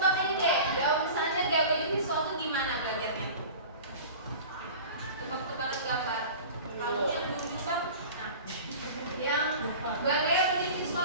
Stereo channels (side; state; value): both; inverted; correlation -0.38